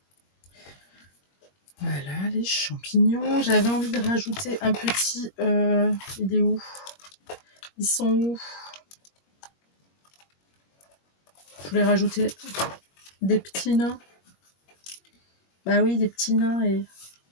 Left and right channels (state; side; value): late; right; 21 ms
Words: Voilà, les champignons. J'avais envie de rajouter un petit... il est où? Ils sont où? Je voulais rajouter des petits nains. Bah oui, des petits nains. Et